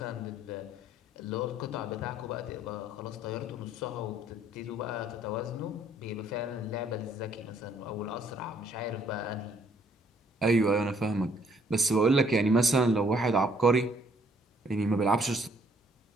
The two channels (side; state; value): both; normal; correlation 0.64